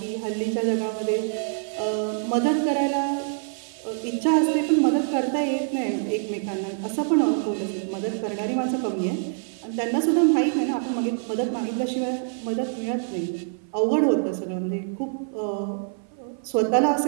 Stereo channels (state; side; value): silent; left; 56 dB below the other